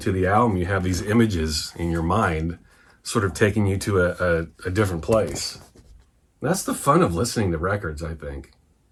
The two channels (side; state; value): both; identical; correlation 1.00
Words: the album, you have these images in your mind sort of taking you to a different place. That's the fun of listening to records, I think,